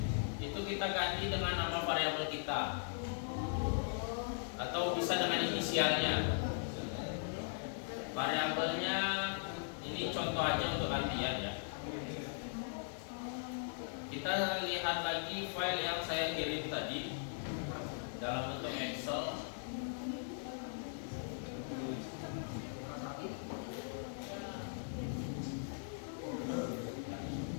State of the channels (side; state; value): right; silent; digital silence